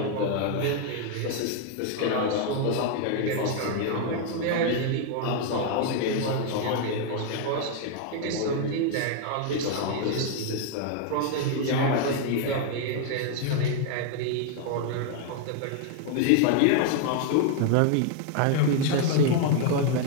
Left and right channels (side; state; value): both; different; correlation 0.00